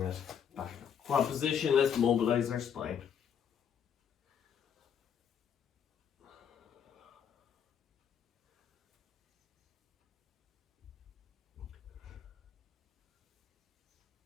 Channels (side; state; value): right; quieter; 8.0 dB